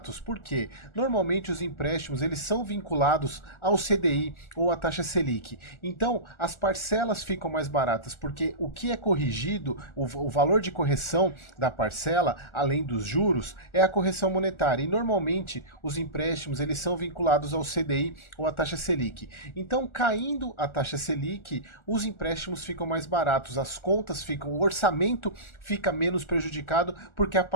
Por quê? Normalmente os empréstimos eles são vinculados ao CDI ou à taxa Selic. Então, as parcelas ficam mais baratas, porque o que é corrigido, o valor de correção da parcela, além dos juros, é a correção monetária. E normalmente os empréstimos eles são vinculados ao CDI ou à taxa Selic. Então, caindo a taxa Selic, os empréstimos ficam mais baratos, as contas ficam, o orçamento fica menos prejudicado porque a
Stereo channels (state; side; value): late; right; 1.4 ms